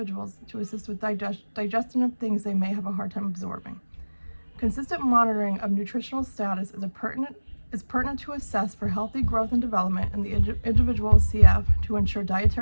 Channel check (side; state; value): both; inverted; correlation -1.00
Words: to assist with digestion of things they may have a hard time absorbing. Consistent monitoring of nutritional status is pertinent to assess for healthy growth and development in the individual with CF to ensure